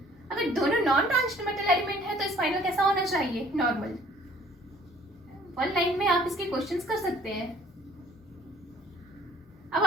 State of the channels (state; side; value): normal; both; correlation 0.56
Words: अगर दोनों नॉन ट्रांजिशन मेटल एलिमेंट है तो स्पाइनल कैसा होना चाहिए, नॉर्मल। 1 लाइन में आप इसके क्वेश्चंस कर सकते हैं। अब